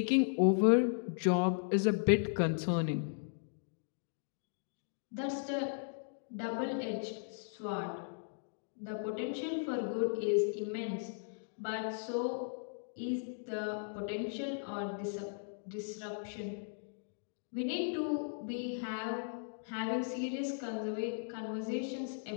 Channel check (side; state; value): right; silent; digital silence